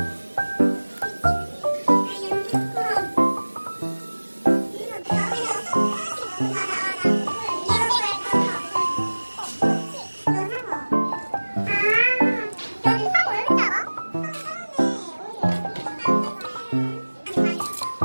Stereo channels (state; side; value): inverted; both; correlation -1.00